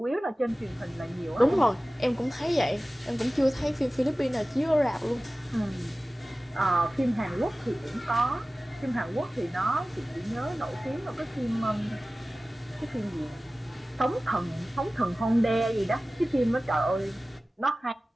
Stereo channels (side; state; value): both; normal; correlation 0.97